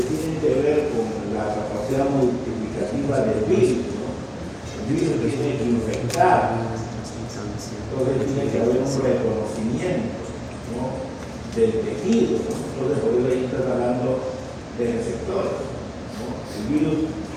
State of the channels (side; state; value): both; identical; correlation 1.00